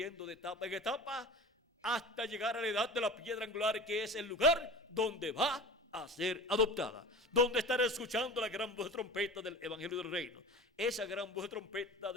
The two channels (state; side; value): normal; both; correlation 0.35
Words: de etapa en etapa hasta llegar a la edad de la piedra angular, que es el lugar donde va a ser adoptada, donde estará escuchando la gran voz de trompeta del Evangelio del Reino, esa gran voz de trompeta